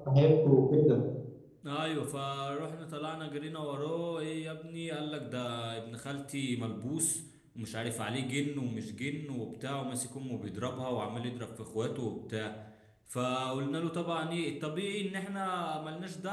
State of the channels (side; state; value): both; identical; correlation 1.00